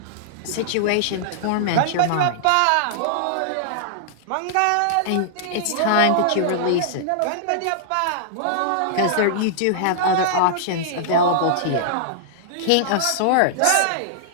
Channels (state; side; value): different; both; correlation -0.01